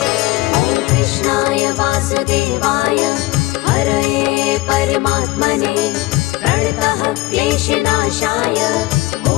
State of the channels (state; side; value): quieter; right; 19.6 dB